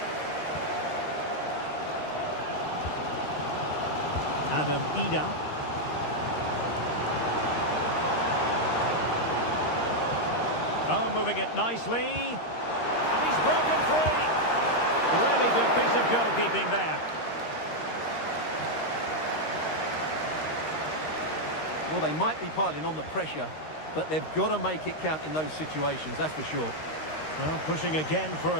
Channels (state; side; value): late; right; 13 ms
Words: Adam Ida. Oh, moving it nicely. And he's broken free. Really good piece of goalkeeping there. Well, they might be piling on the pressure, but they've got to make it count in those situations, that's for sure. Well, pushing again for